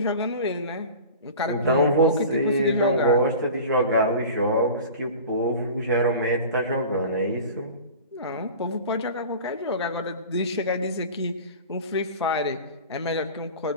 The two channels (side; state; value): both; inverted; correlation -0.37